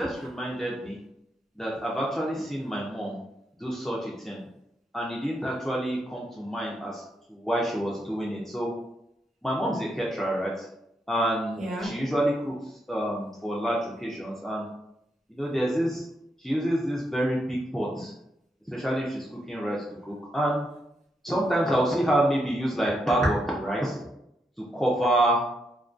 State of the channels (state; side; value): normal; both; correlation 0.80